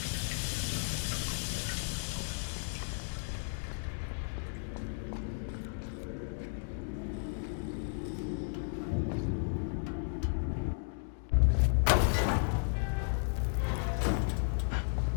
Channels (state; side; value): silent; right; digital silence